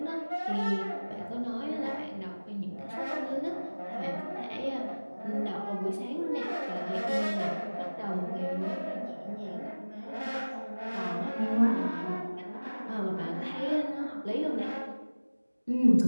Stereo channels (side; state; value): both; inverted; correlation -1.00